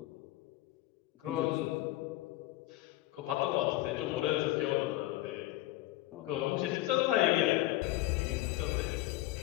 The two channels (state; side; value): quieter; right; 16.9 dB